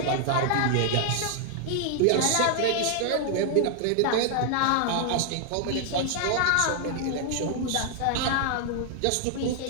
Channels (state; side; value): different; both; correlation 0.00